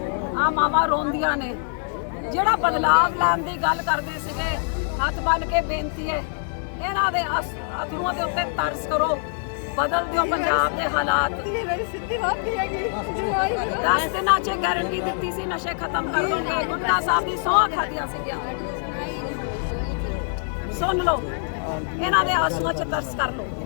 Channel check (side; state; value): right; silent; 61 dB below the other